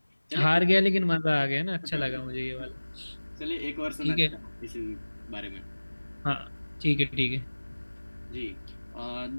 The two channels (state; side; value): inverted; both; correlation -1.00